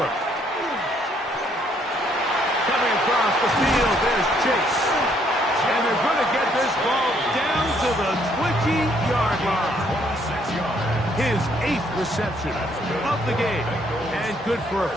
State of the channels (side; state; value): both; normal; correlation 0.68